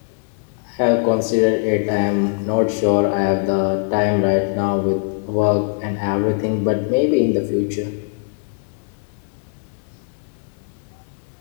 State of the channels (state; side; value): silent; right; digital silence